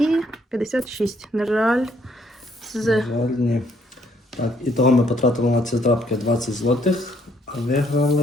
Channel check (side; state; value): both; normal; correlation 0.68